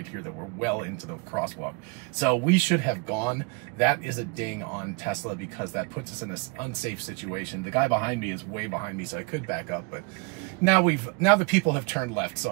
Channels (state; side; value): quieter; left; 30.9 dB